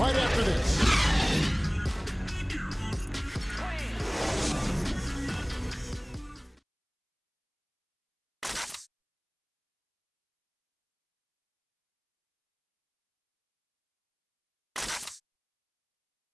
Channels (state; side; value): identical; both; correlation 1.00